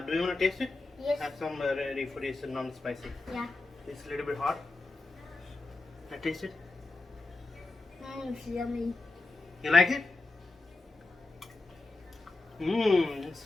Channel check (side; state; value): right; quieter; 3.3 dB